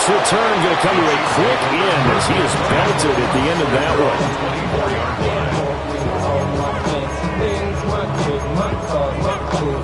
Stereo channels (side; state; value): both; identical; correlation 1.00